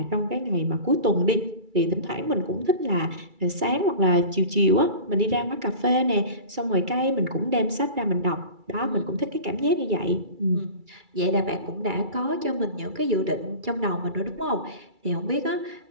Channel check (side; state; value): left; late; 2.3 ms